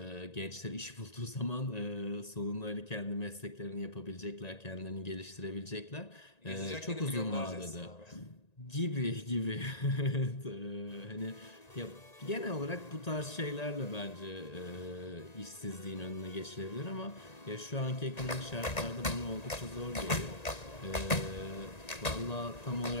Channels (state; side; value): late; right; 1.9 ms